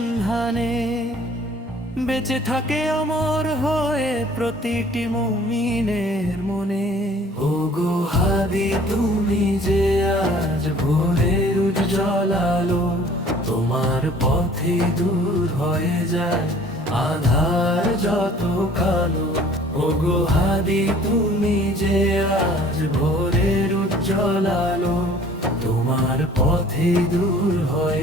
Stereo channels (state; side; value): normal; both; correlation 0.52